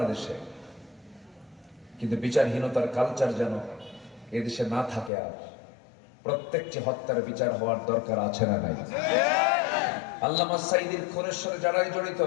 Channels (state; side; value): drops out; right; at 5.1 s